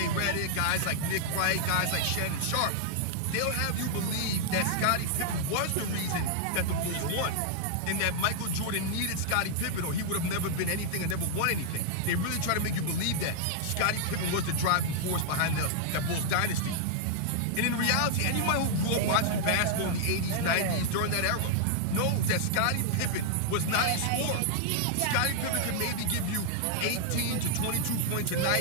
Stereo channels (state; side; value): different; both; correlation -0.01